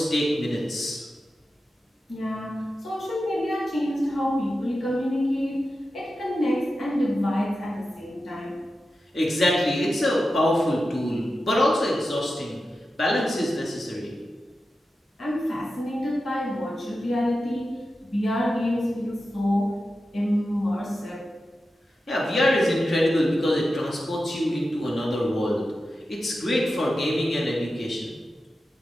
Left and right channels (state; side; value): normal; both; correlation 0.92